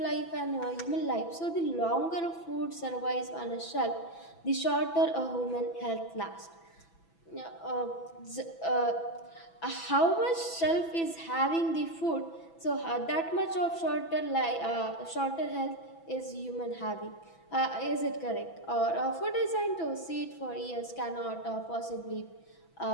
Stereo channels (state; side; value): late; right; 6.0 ms